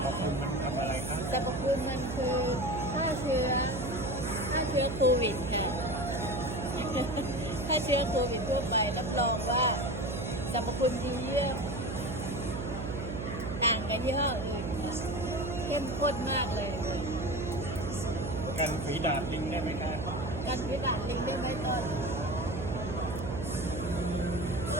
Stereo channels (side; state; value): right; noise; hum, 5 dB below the sound